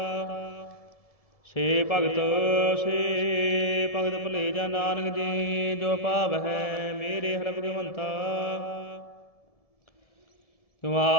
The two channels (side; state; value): right; late; 1.7 ms